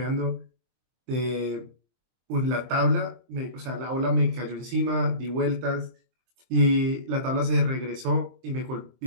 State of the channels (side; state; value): left; late; 23 ms